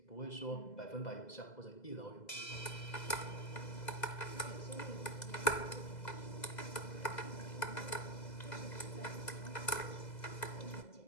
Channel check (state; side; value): late; right; 2.0 ms